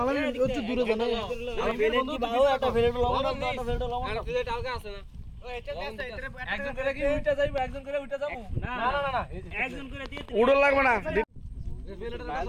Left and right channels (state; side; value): identical; both; correlation 1.00